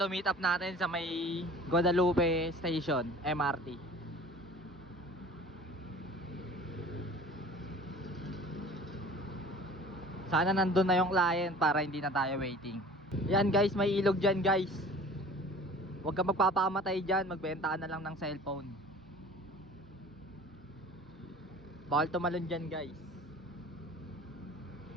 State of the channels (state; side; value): normal; both; correlation 0.45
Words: meet up natin sa may Guadalupe Station, MRT. Sana nandun na yung client para hindi na tayo waiting. Yan guys, may ilog dyan guys. Huwag ka magpapakamatay dyan, magbenta ka na lang ng cellphone. Bawal tumalon dyan guys.